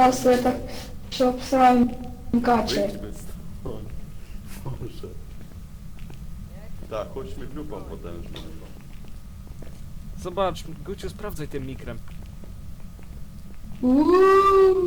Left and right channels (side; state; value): both; identical; correlation 1.00